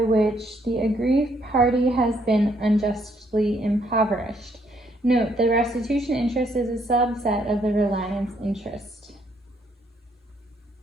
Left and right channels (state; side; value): normal; both; correlation 0.70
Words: the aggrieved party has been unjustly impoverished. Note, the restitution interest is a subset of the reliance interest.